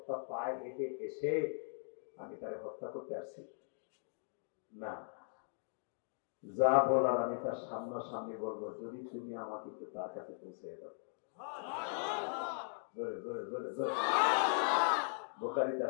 পায়ে হেঁটে এসে আমি তারে হত্যা করতে আসছি না, যা বলার আমি তার সামনাসামনি বলবো, যদি তুমি আমাকে একটু তার কাছে পৌঁছে দাও। জোরে জোরে জোরে জোরে। বুখারীতে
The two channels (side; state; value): right; silent; digital silence